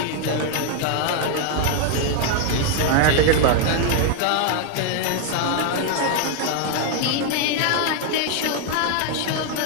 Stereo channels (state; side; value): different; both; correlation 0.00